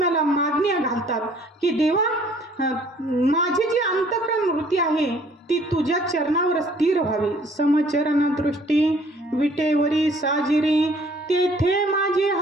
मागण्या घालतात की देवा, माझी जी अंतःकरण वृत्ती आहे ती तुझ्या चरणावर स्थिर व्हावी. समचरण दृष्टी विटेवरी साजिरी, तेथे माझी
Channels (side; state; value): both; normal; correlation 0.58